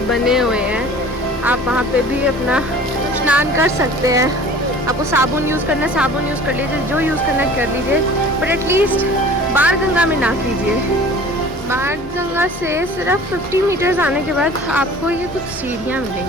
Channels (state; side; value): normal; both; correlation 0.45